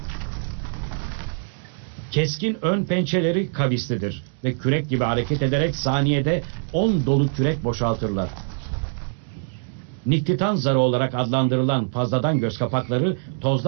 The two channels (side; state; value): left; silent; digital silence